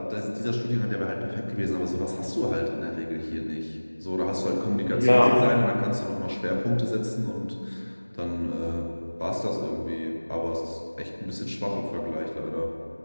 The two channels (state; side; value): inverted; both; correlation -1.00